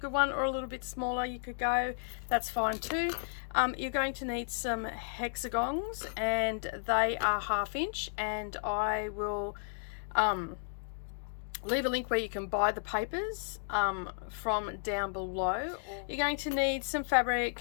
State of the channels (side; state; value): right; silent; digital silence